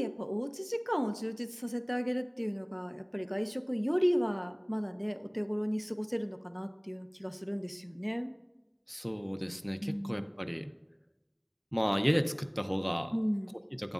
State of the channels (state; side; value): identical; both; correlation 1.00